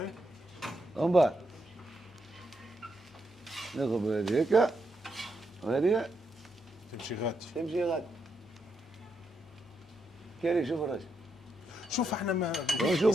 ومن بعد ناخذ هذه هيك وهذه تمشي غادي. تمشي غادي كيري شوف الراجل شوف احنا ما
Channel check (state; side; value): normal; both; correlation 0.81